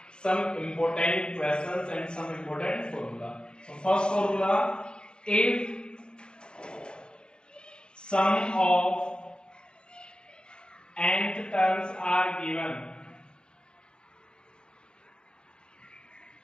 some important questions and some important formula. So, first formula: if sum of nth terms are given,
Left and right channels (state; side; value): late; right; 0.050 ms